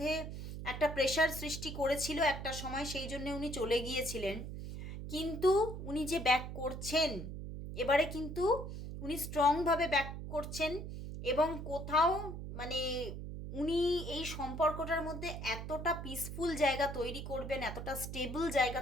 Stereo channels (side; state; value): right; noise; hum, 7 dB below the sound